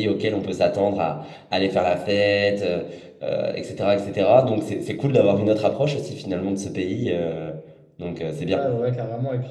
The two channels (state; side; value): identical; both; correlation 1.00